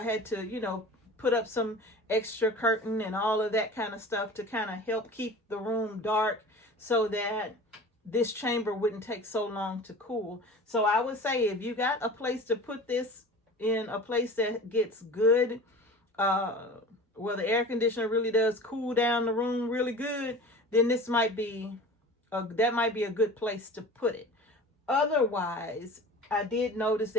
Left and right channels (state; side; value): normal; both; correlation 0.38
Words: had to, you know, put up some extra curtain and all of that kind of stuff to kind of help keep the room dark, so that this chamber wouldn't take so long to cool. So I would say, if you got a place to put this in, a place that gets good, where the air conditioner really does cool down the room really good, then this might be that might be a good place to put it. Otherwise, I did notice